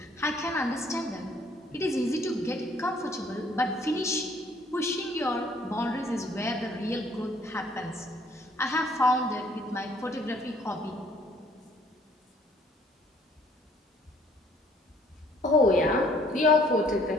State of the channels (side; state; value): both; normal; correlation 0.61